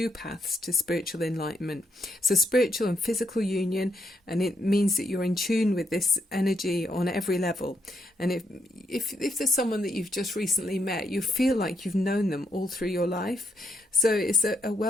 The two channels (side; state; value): both; normal; correlation 0.77